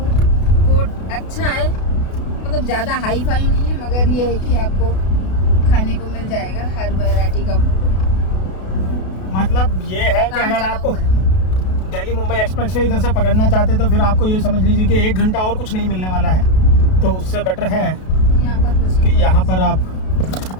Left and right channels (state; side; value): late; right; 32 ms